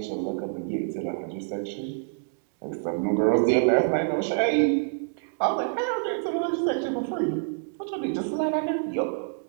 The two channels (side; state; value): left; silent; digital silence